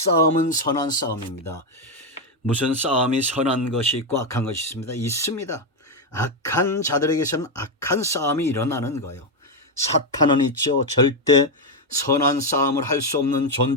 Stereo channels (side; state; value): both; normal; correlation 0.05